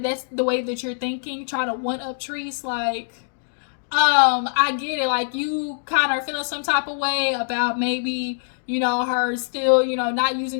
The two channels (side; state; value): right; silent; digital silence